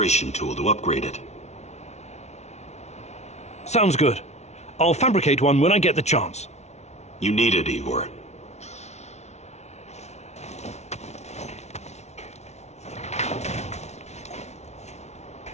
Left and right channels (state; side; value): late; right; 0.32 ms